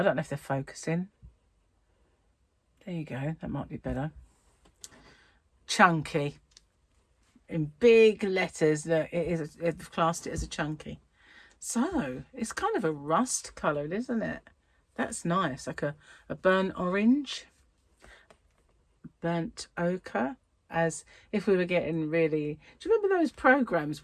don't know if they're focusing. There you go, that might be better. Chunky. In big letters, that they've classed it as a chunky. So, it's kind of a rust colour, isn't it? That's nice, like a burnt orange. Burnt ochre. As if we were getting really... Do you remember those programs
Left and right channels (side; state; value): both; identical; correlation 1.00